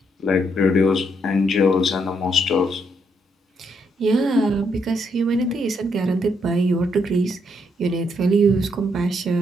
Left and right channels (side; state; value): both; normal; correlation 0.75